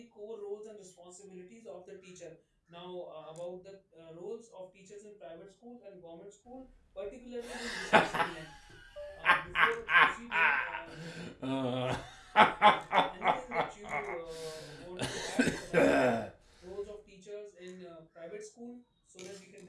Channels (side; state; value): both; identical; correlation 1.00